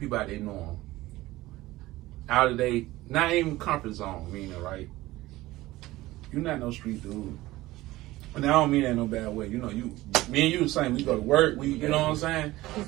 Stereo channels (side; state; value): left; quieter; 17.8 dB